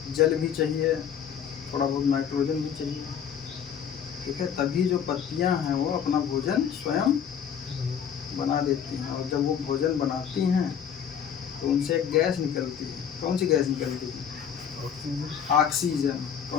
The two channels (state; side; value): quieter; right; 8.2 dB